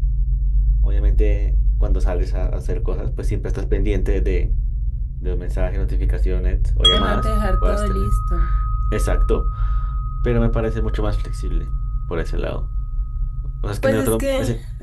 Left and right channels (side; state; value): both; identical; correlation 1.00